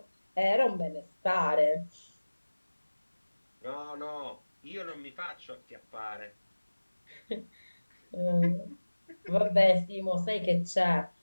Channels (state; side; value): inverted; both; correlation -1.00